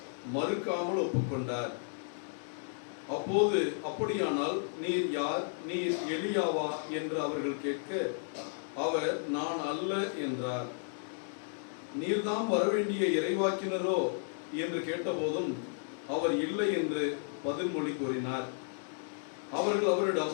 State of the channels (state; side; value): silent; right; digital silence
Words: மறுக்காமல் ஒப்புக்கொண்டார். அப்போது, அப்படியானால் நீர் யார்? நீர் எலியாவா என்று அவர்கள் கேட்க, அவர், நான் அல்ல என்றார். நீர்தாம் வரவேண்டிய இறைவாக்கினரோ என்று கேட்டபோதும் அவர் இல்லை என்று பதில்மொழி கூறினார். அவர்கள்